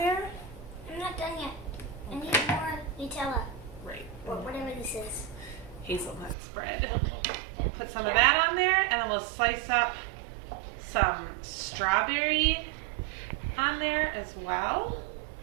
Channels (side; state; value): left; drops out; at 6.4 s